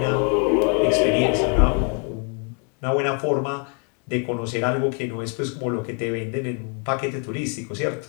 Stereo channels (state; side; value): quieter; right; 38.3 dB